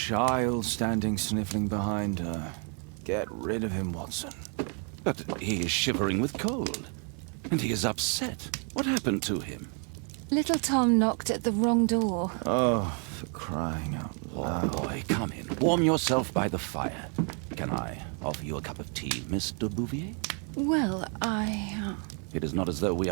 standing sniffling behind her. Get rid of him, Watson. But he is shivering with cold. And he is upset. What happened to him? Little Tom knocked at the wrong door. Oh, for crying out loud. Oh, boy, come in. Warm yourself by the fire. Can I offer you a cup of tea, Mr. Bouvier? Well, It is not as though we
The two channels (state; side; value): quieter; left; 39.1 dB